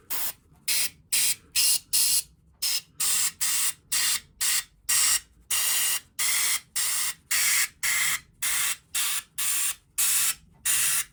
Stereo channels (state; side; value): identical; both; correlation 1.00